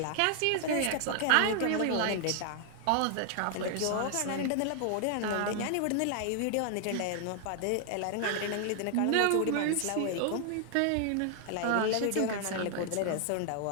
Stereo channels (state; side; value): different; both; correlation 0.00